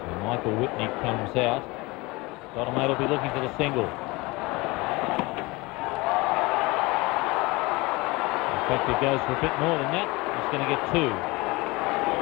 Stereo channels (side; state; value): right; quieter; 23.6 dB